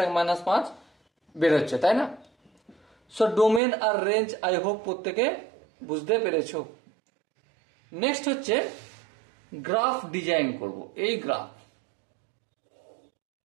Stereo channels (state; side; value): drops out; left; at 3.6 s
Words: -5 বেরোচ্ছে, তাই না? সো ডোমেন আর রেঞ্জ আই হোপ প্রত্যেকে বুঝতে পেরেছো। নেক্সট হচ্ছে গ্রাফ ডিজাইন করব। এই গ্রাফ,